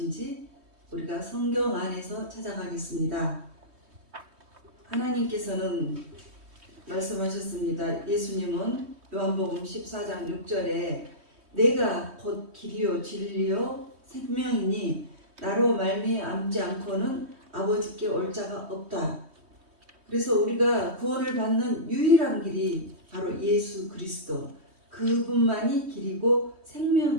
우리가 성경 안에서 찾아가겠습니다. 하나님께서는 말씀하셨습니다. 예수님은 요한복음 14장 6절에 내가 곧 길이요 진리요 생명이니 나로 말미암지 않고는 아버지께 올 자가 없다. 그래서 우리가 구원을 받는 유일한 길이 바로 예수 그리스도, 그분만이 길이고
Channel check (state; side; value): late; left; 3.2 ms